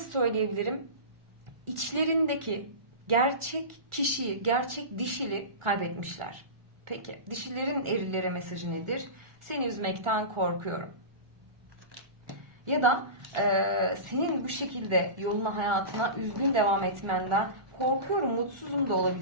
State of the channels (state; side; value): late; left; 1.4 ms